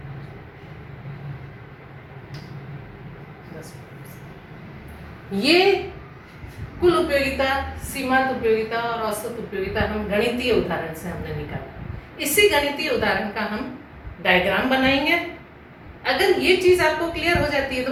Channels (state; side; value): identical; both; correlation 1.00